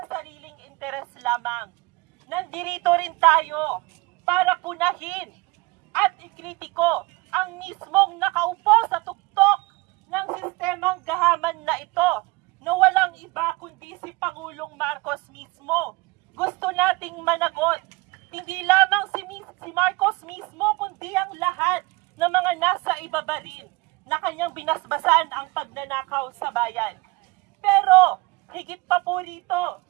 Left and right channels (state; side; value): quieter; left; 24.1 dB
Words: sariling interes lamang. Nandito rin tayo para punahin at ikritiko ang mismong nakaupo sa tuktok ng sistemang gahaman na ito na walang iba kundi si Pangulong Marcos mismo. Gusto nating managot, hindi lamang si Marcos mismo kundi ang lahat ng mga nasa ibaba rin na kanyang binasbasan ang pagnanakaw sa bayan. Pero higit pa po rito,